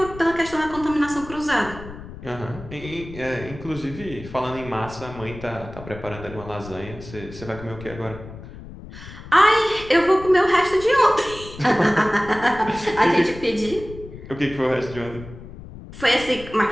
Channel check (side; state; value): left; noise; rumble, 14 dB below the sound